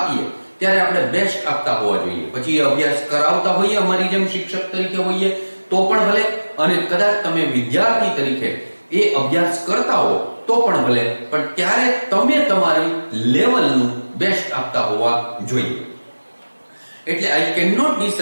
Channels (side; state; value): both; inverted; correlation -1.00